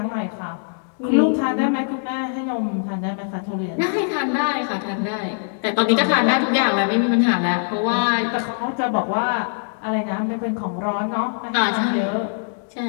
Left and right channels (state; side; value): silent; right; digital silence